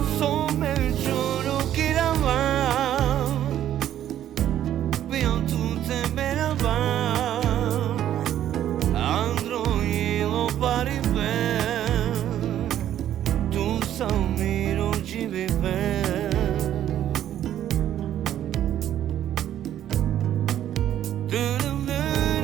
So me qoro kira va Bion tute me na va Androilo pari ben Tu sa miro ci mi ben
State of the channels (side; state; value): left; quieter; 11.3 dB